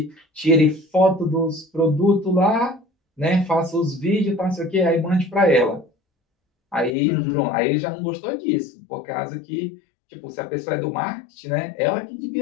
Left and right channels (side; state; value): right; drops out; at 6.9 s